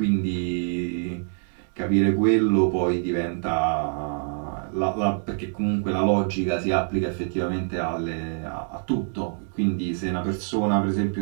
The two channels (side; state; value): left; silent; 62 dB below the other